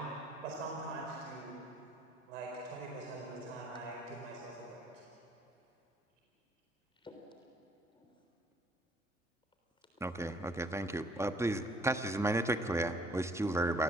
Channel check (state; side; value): normal; both; correlation 0.61